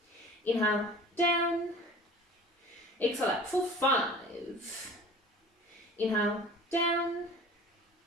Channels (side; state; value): both; normal; correlation 0.42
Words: Inhale, down. Exhale up for 5. Inhale, down.